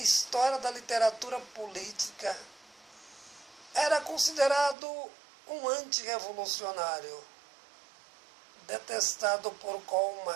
da literatura política, era considerado um antirrevolucionário, detestado por Karl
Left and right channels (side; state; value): left; drops out; at 4.8 s